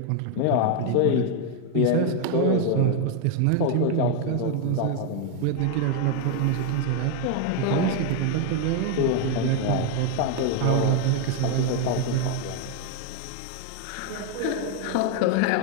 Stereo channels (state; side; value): different; both; correlation 0.01